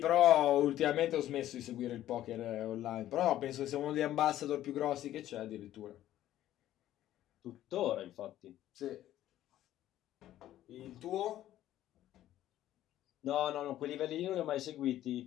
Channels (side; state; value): right; quieter; 13.0 dB